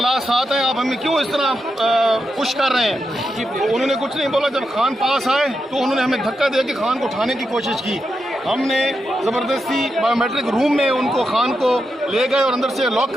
ساتھ ہیں، آپ ہمیں کیوں اس طرح پش کر رہے ہیں. انہوں نے کچھ نہیں بولا. جب خان پاس آئے تو انہوں نے ہمیں دھکا دے کے خان کو اٹھانے کی کوشش کی. ہم نے زبردستی بایو میٹرک روم میں ان کو خان کو لے گئے اور اندر سے لاک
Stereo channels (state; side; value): normal; both; correlation 0.86